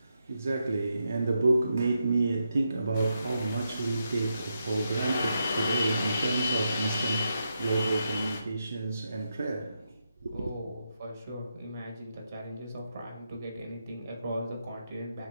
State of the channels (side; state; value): both; inverted; correlation -0.83